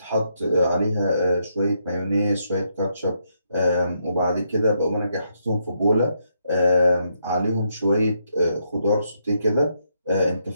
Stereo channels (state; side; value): inverted; both; correlation -0.77